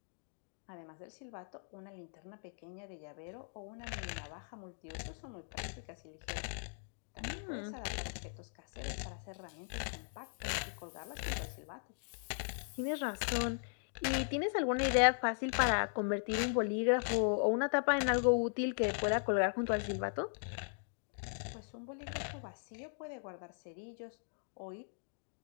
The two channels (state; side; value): silent; right; digital silence